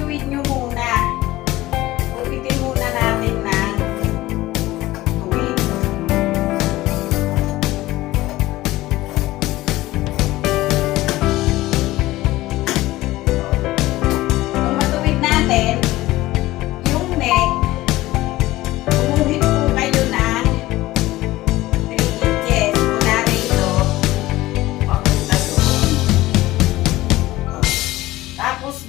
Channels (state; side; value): quieter; right; 17.4 dB